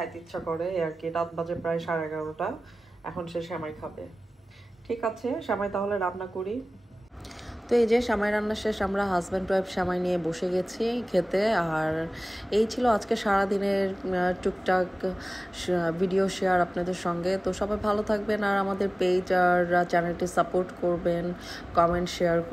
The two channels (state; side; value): normal; both; correlation 0.97